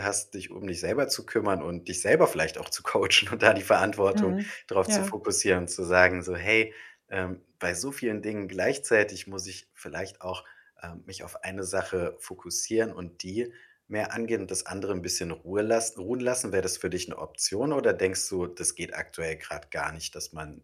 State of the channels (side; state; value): both; identical; correlation 1.00